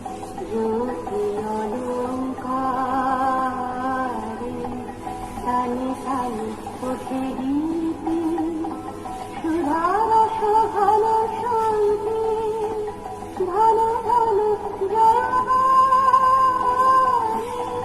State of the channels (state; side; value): identical; both; correlation 1.00